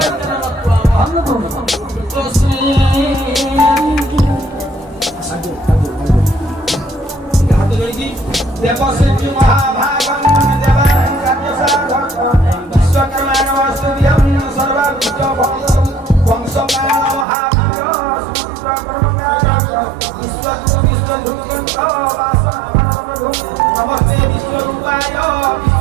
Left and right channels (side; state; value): left; drops out; at 17.2 s